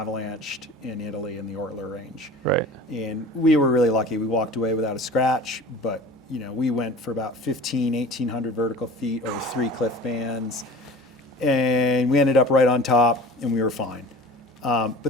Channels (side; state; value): both; normal; correlation 0.40